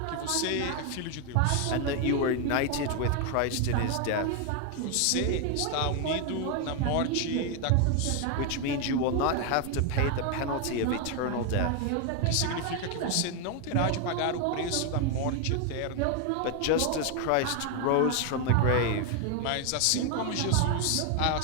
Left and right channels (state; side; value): different; both; correlation 0.01